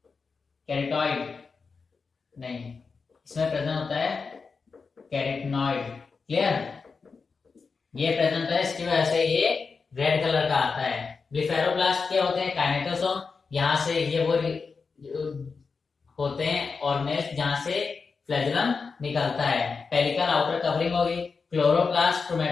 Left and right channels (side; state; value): right; quieter; 4.9 dB